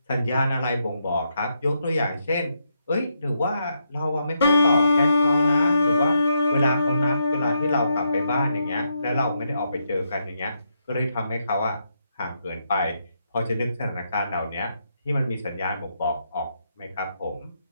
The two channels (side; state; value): both; inverted; correlation -0.80